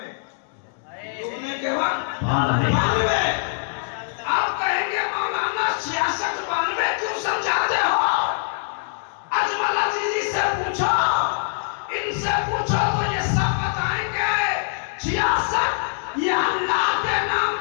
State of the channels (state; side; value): silent; right; digital silence